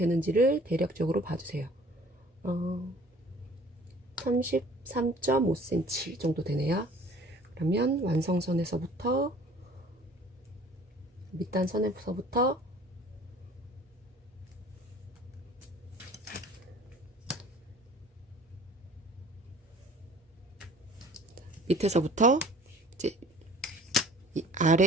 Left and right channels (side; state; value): both; normal; correlation 0.50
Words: 대략적으로 봐주세요. 33.5cm 정도 되네요. 그러면 완성선에서부터 밑단선에서부터 밑에서부터 이제 이